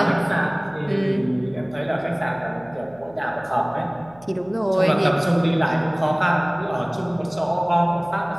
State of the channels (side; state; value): right; noise; hum, 25 dB below the sound